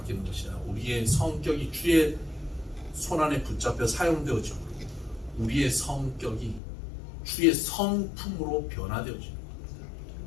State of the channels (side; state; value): right; drops out; at 6.6 s